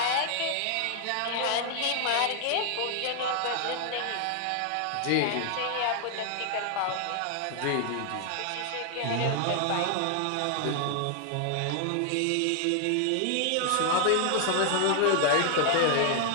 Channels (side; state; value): both; different; correlation 0.00